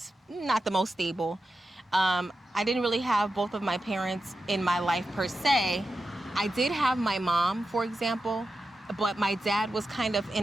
not the most stable. I didn't really have both of my parents in my life per se. I did have my mom, for example, but my dad was kind of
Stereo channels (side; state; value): both; normal; correlation 0.91